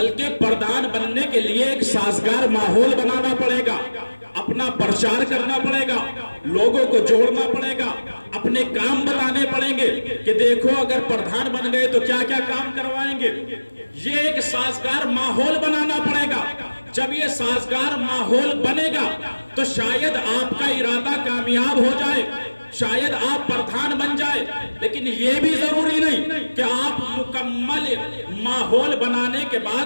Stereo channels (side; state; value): both; inverted; correlation -1.00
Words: پردھان بننے کے لیے ایک سازگار ماحول بنانا پڑے گا، اپنا پرچار کرنا پڑے گا، لوگوں کو جوڑنا پڑے گا، اپنے کام بتانے پڑیں گے کہ دیکھو اگر پردھان بن گئے تو کیا کیا کام کروائیں گے۔ یہ ایک سازگار ماحول بنانا پڑے گا۔ جب یہ سازگار ماحول بنے گا تو شاید آپ کا ارادہ کامیاب ہو جائے، شاید آپ پردھان بن جائے، لیکن یہ بھی ضروری نہیں کہ آپ مکمل ماحول بنانے کے